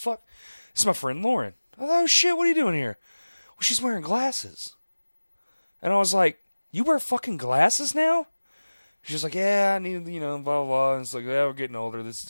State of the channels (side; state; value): both; inverted; correlation -1.00